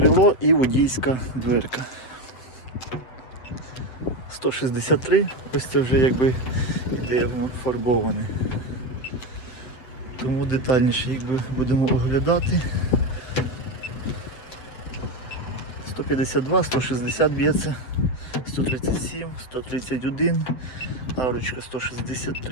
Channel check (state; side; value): late; right; 7.8 ms